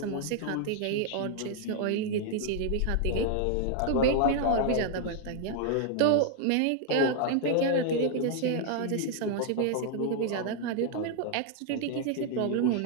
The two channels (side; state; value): both; different; correlation 0.00